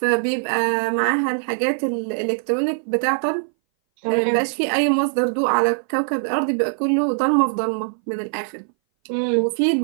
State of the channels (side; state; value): left; silent; 60 dB below the other